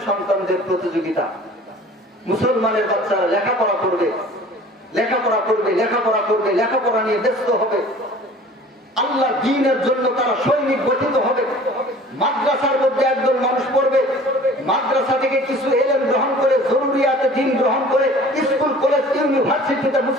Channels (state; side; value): normal; both; correlation 0.46